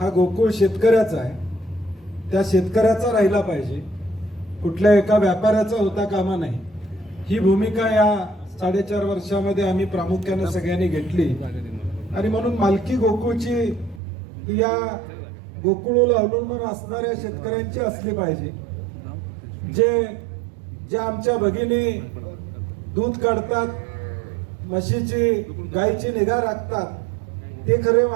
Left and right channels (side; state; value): left; drops out; at 14.0 s